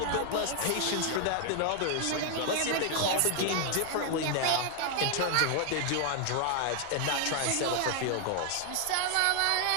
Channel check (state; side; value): different; both; correlation 0.00